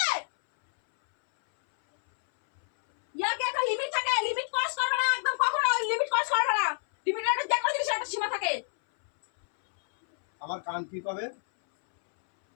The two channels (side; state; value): right; silent; 59 dB below the other